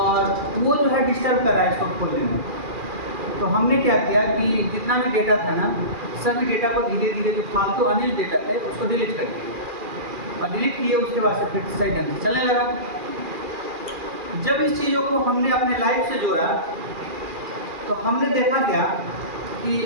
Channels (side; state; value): left; late; 2.4 ms